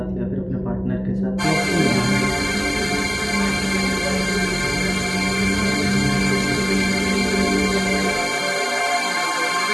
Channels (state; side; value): identical; both; correlation 1.00